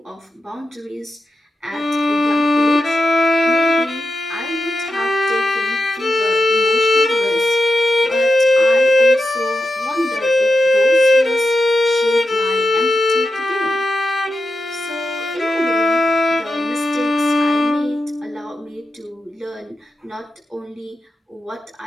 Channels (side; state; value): both; normal; correlation 0.89